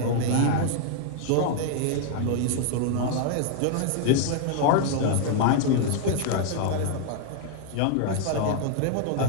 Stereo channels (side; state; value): both; different; correlation 0.00